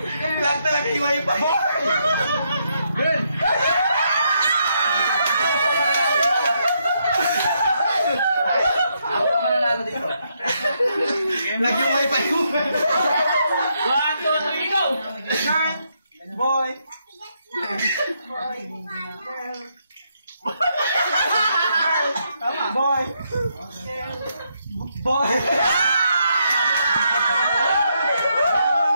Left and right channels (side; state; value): both; inverted; correlation -0.77